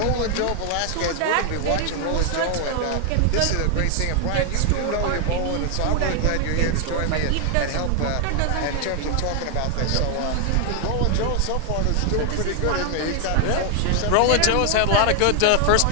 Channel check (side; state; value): both; different; correlation 0.00